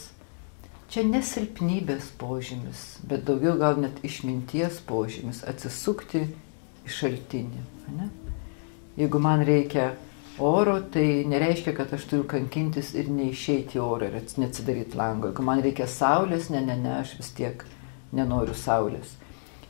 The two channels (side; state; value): right; silent; 59 dB below the other